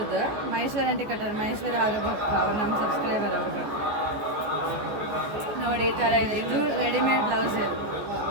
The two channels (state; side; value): late; left; 14 ms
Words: ಮಹೇಶ್ವರಿ ಆಂಟಿ ಕಟ್ಟಾರ. ಮಹೇಶ್ವರಿ ಅವ್ರಿಗೂ ಅವ್ರು ನಮ್ಮ ಸಬ್ಸ್ಕ್ರೈಬರ್. ಅವ್ರಿಗೆ ನೋಡಿ ಈ ಥರ ಇದೆ. ಇದು ರೆಡಿಮೇಡ್ ಬ್ಲೌಸ್. ಇದು